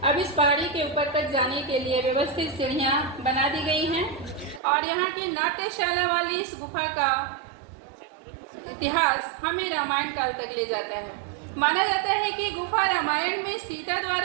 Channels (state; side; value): drops out; left; at 4.6 s